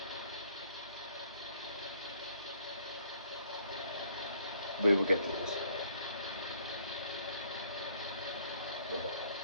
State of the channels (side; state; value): both; inverted; correlation -0.61